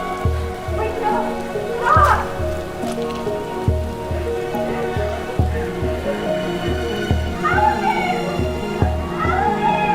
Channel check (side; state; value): both; identical; correlation 1.00